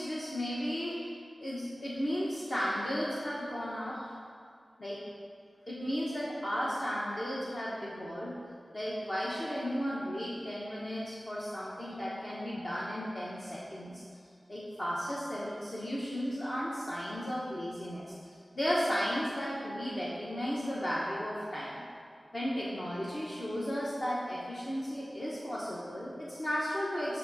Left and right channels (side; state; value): both; normal; correlation 0.96